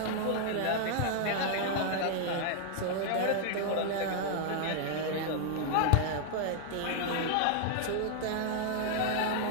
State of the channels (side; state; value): both; different; correlation -0.01